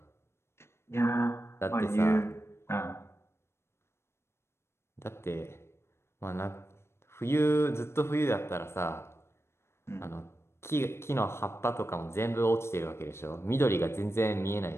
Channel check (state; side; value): late; right; 0.12 ms